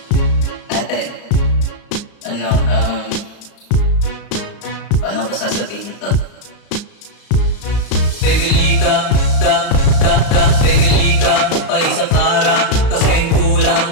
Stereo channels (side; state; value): right; late; 34 ms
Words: Ate, paano ko sasabihin to? Bibili ka, bibili ka pa isa para kasing kulang